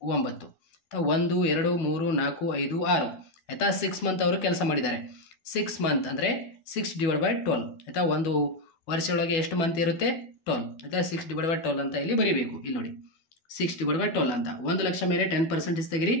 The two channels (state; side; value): late; right; 12 ms